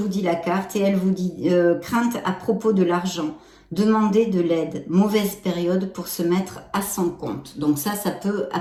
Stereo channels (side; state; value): both; identical; correlation 1.00